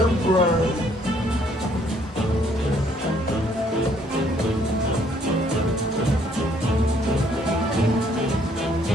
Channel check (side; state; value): both; normal; correlation 0.65